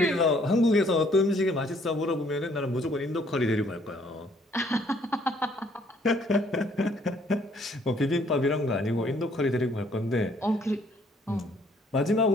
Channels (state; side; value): normal; both; correlation 0.63